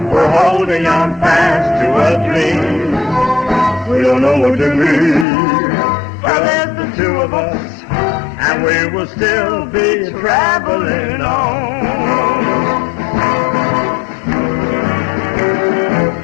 we're holding on fast to a dream. We don't know what to be, but there's the two of us, and we will still be traveling on.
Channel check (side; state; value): right; drops out; at 5.2 s